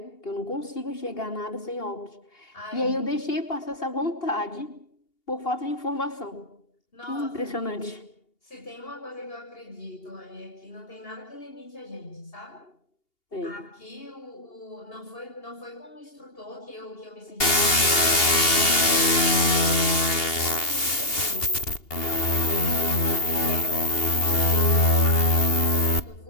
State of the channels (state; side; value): late; right; 2.8 ms